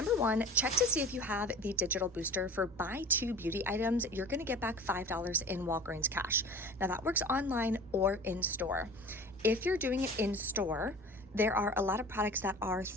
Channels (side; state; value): both; normal; correlation 0.39